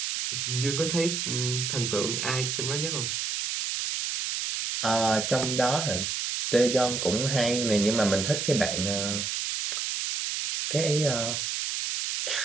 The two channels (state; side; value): noise; right; hiss, 2 dB below the sound